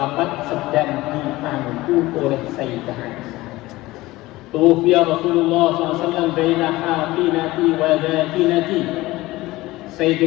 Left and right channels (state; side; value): quieter; right; 18.9 dB